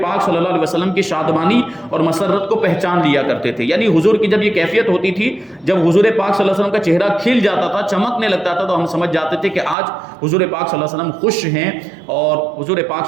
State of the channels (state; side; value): drops out; left; at 9.8 s